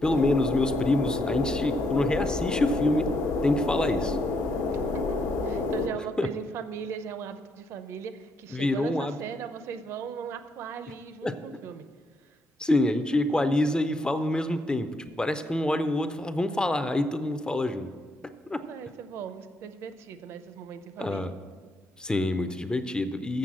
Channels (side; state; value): both; normal; correlation 0.76